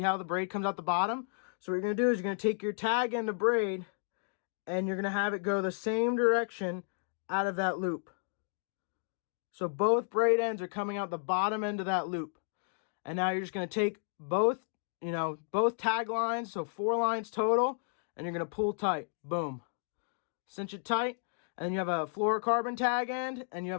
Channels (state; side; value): silent; right; digital silence